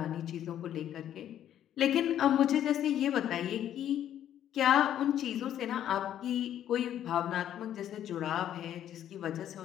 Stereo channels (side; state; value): right; quieter; 10.8 dB